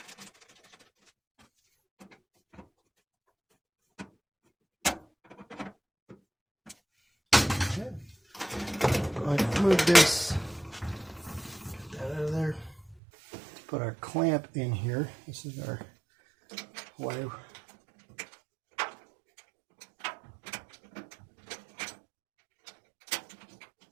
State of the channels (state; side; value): drops out; left; at 13.0 s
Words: Okay. Go ahead and remove this. Get that out of there. Let's put our clamp in here. This is our wire.